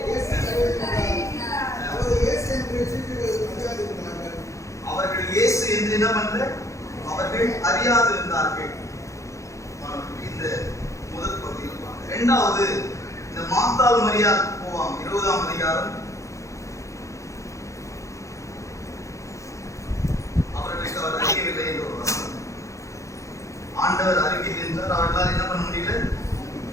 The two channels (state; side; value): late; right; 0.15 ms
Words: யோவான் 20ஆம் அதிகாரம் அவர்களுக்கு அவர் அறியவில்லை என்று ஒரு வசனம். ஆண்டவர் அறிவியல் என்றார், அவர்களால் என்ன பண்ண முடியல,